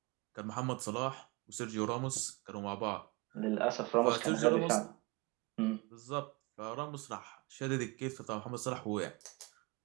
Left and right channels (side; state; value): left; quieter; 26.1 dB